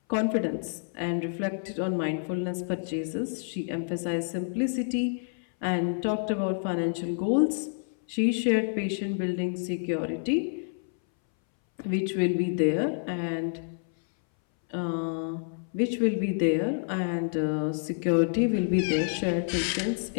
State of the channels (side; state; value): right; silent; 59 dB below the other